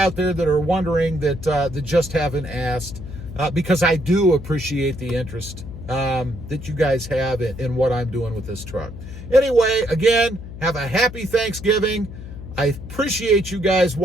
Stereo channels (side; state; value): left; noise; hum, 12 dB below the sound